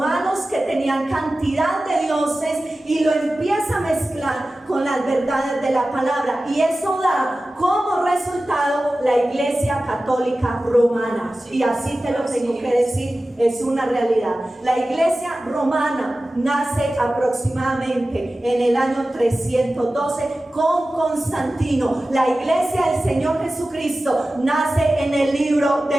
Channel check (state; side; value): normal; both; correlation 0.95